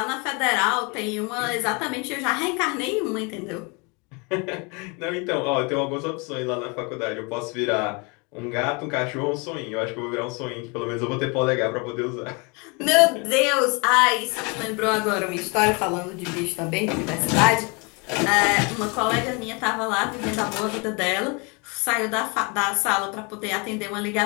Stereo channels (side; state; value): right; quieter; 30.8 dB